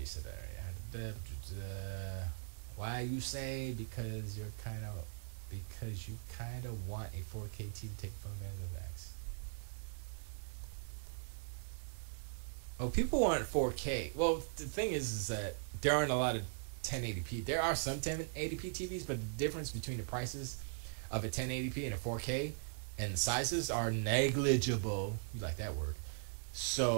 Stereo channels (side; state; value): left; silent; digital silence